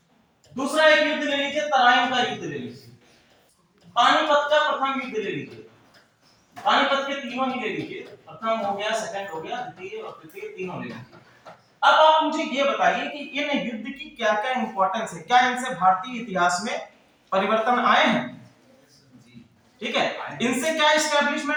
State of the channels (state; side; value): identical; both; correlation 1.00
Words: दूसरा एक युद्ध ले लीजिए, तराइन का युद्ध ले लीजिए, पानीपत का प्रथम युद्ध ले लीजिए, पानीपत के तीनों ही ले लीजिए, प्रथम हो गया, सेकंड हो गया, द्वितीय और तृतीय तीनों ले लीजिए। अब आप मुझे ये बताइए कि इन युद्ध की क्या क्या इंपॉर्टेंस है, क्या इनसे भारतीय इतिहास में परिवर्तन आए हैं? ठीक है, इनसे क्या